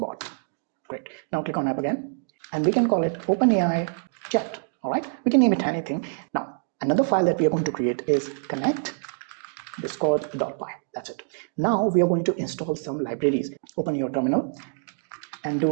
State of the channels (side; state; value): left; silent; digital silence